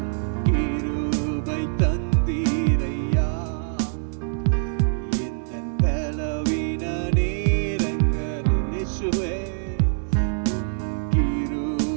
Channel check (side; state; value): left; silent; digital silence